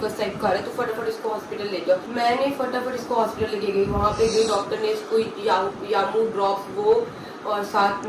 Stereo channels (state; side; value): identical; both; correlation 1.00